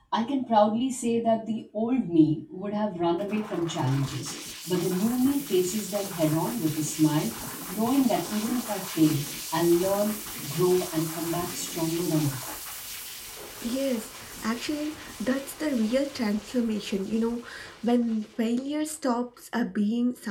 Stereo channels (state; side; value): identical; both; correlation 1.00